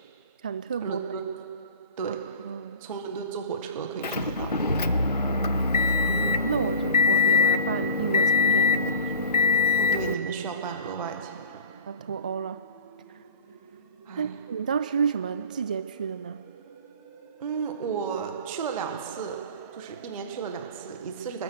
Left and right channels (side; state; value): both; inverted; correlation -0.40